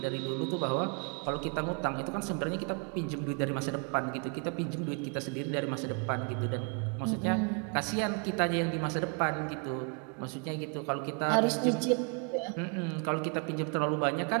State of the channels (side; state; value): left; quieter; 38.4 dB